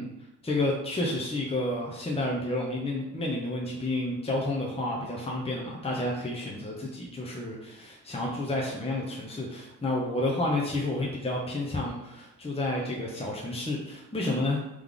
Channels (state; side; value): normal; both; correlation 0.48